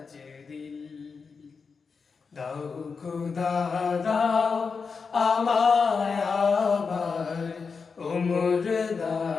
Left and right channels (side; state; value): right; quieter; 5.2 dB